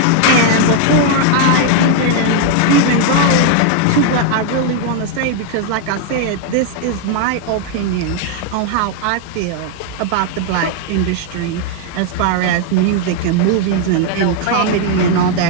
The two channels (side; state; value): both; different; correlation 0.00